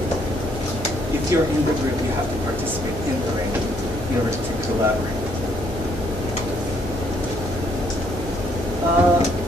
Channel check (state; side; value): noise; right; hum, 10 dB below the sound